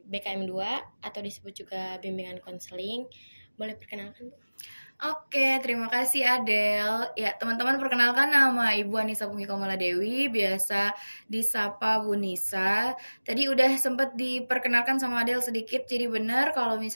BKM 2 atau disebut juga bimbingan konseling. Boleh perkenalkan, Bu? Oke, terima kasih Adel. Ya, teman-teman perkenalkan nama Ibu Anissa Punggi Komala Dewi, biasa disapa Bu Nisa. Tadi udah sempat diperkenalkan sama Adel sedikit, jadi benar kalau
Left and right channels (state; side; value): inverted; both; correlation -1.00